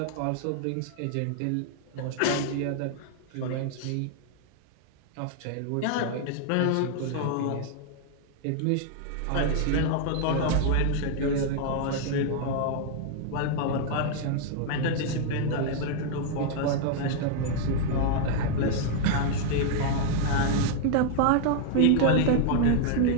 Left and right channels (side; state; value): both; different; correlation -0.01